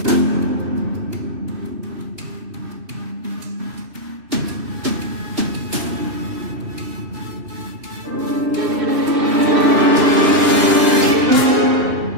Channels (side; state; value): left; late; 2.9 ms